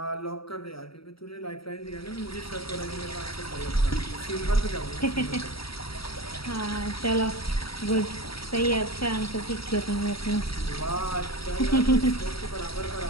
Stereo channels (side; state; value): right; late; 0.75 ms